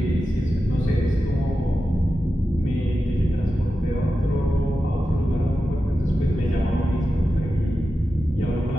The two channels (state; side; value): normal; both; correlation 0.91